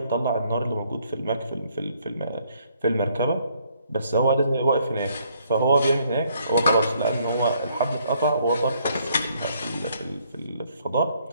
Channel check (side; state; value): both; inverted; correlation -0.67